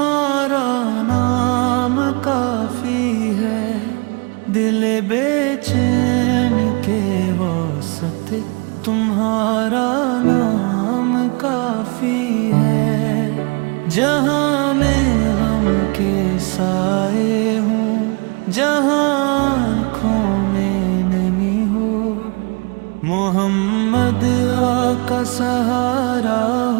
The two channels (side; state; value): left; quieter; 31.8 dB